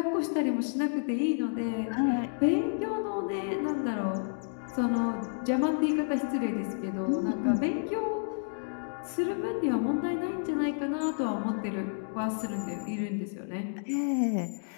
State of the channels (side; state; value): right; silent; digital silence